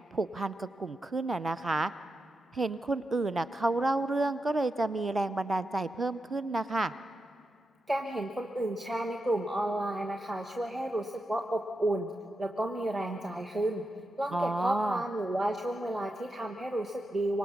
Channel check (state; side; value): normal; both; correlation 0.88